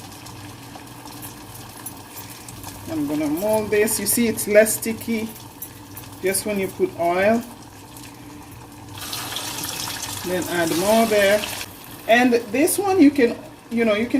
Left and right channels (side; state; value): both; identical; correlation 1.00